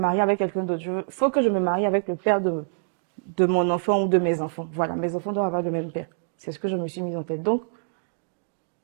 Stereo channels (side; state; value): left; silent; digital silence